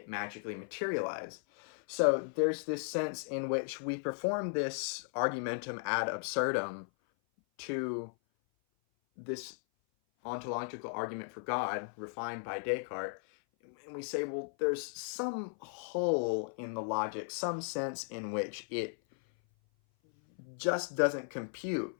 magically materialize. So there's this sense in which we perform this argumentum ad absurdum to this ontological argument for God refined by Descartes, and we say, well, there's some hole in the logic, some sense in which it just doesn't compute.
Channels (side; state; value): right; silent; 54 dB below the other